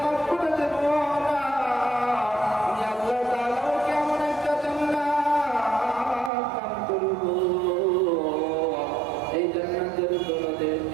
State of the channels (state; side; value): drops out; left; at 6.3 s